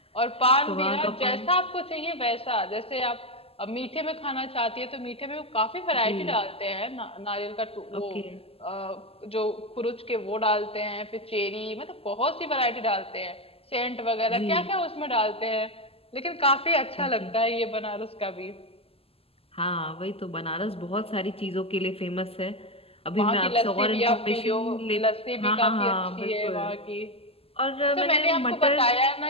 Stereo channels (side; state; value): right; late; 0.28 ms